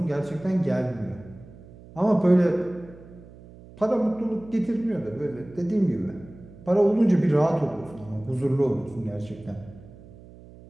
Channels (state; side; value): noise; right; hum, 20 dB below the sound